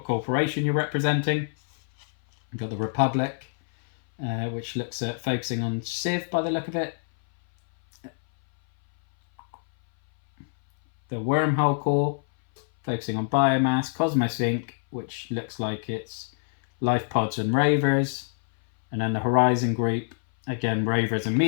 corporation you're representing. We've got the Republic, which looks at focusing on Civ by the look of it. The Wormhole Core, focusing on biomass. Cosmos Inc., which looks like it's life pods and ravers. And then the Horizon Group, again, ravers and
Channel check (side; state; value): right; silent; 59 dB below the other